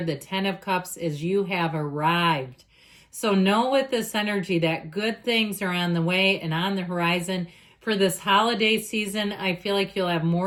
The Ten of Cups is you have arrived. So know with this energy that good things are on the way and on the horizon. For this holiday season, I feel like you'll have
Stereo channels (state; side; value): identical; both; correlation 1.00